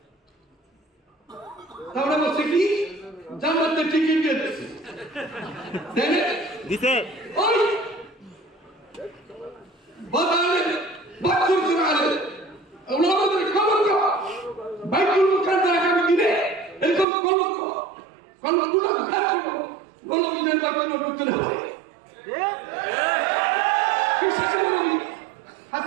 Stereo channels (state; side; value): drops out; left; at 17.1 s